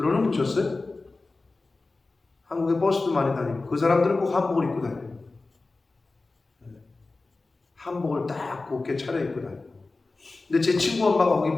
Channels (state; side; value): quieter; right; 3.5 dB